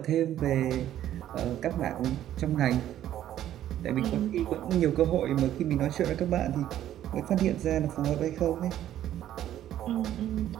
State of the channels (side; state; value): left; quieter; 11.9 dB